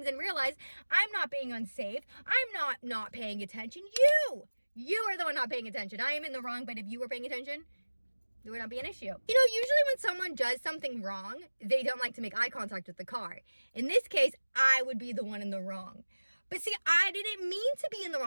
and realize I'm not being unsafe. I'm not paying attention. You are the one not paying attention. I am in the wrong, but if you were paying attention, there would not be an issue. You know, usually when someone does something wrong, they don't like to make eye contact with the car. In this case, I would be the one in the wrong. But see, I didn't mean to be in the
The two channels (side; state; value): both; inverted; correlation -1.00